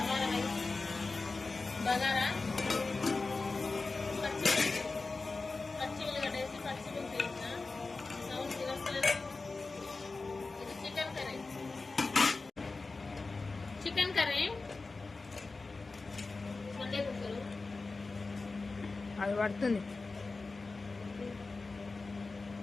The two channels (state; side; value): quieter; right; 3.8 dB